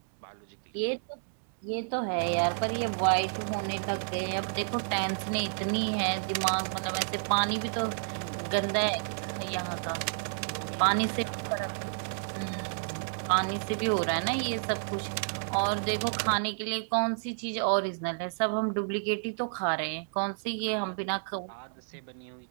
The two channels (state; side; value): silent; left; digital silence